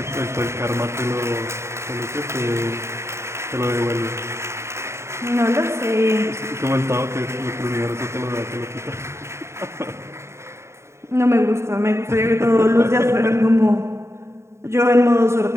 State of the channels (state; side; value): late; left; 0.13 ms